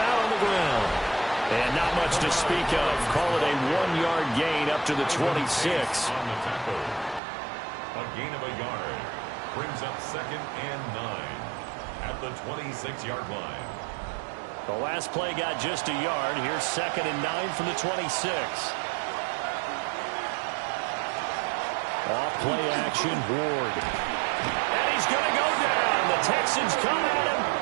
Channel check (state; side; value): drops out; left; at 7.2 s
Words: on the ground. And not much to speak of. Call it a 1-yard gain up to the 26. A gain of a yard brings up 2nd and 9 at the 26-yard line. The last play got just a yard. Here's 2nd and 9 from the 26. Off play action, Ward. And he's going to go down. The Texans come at him